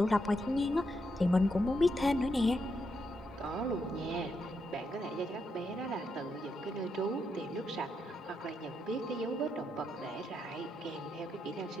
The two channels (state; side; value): normal; both; correlation 0.81